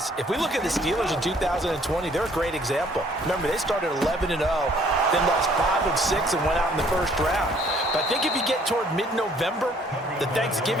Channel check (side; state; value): both; normal; correlation 0.61